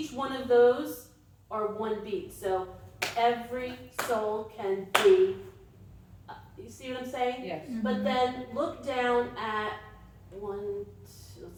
one of those are 1 beat. So every soul can be, you see what I'm saying? Yes. But then look down at 1, 2,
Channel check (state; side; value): identical; both; correlation 1.00